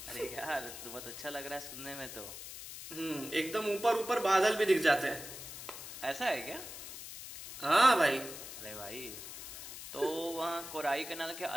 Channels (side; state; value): left; noise; hiss, 10 dB below the sound